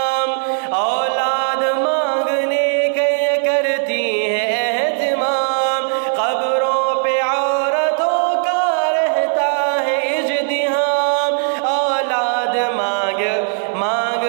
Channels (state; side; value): silent; left; 64 dB below the other